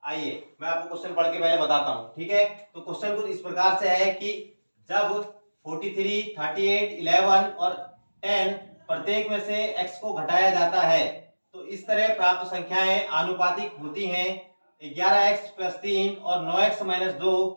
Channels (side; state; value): both; inverted; correlation -1.00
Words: आइए मैं आपको क्वेश्चन पढ़ के पहले बताता हूं। ठीक है, तो क्वेश्चन कुछ इस प्रकार से है कि जब 43, 38, 11 और 10 प्रत्येक में से x को घटाया जाता है तो इस तरह प्राप्त संख्याएं आनुपातिक होती हैं। 11x प्लस 3 और 9x माइनस 2